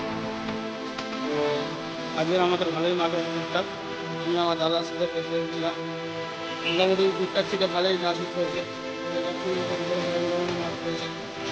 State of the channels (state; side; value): identical; both; correlation 1.00